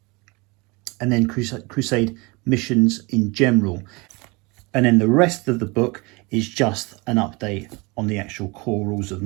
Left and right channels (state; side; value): quieter; left; 26.4 dB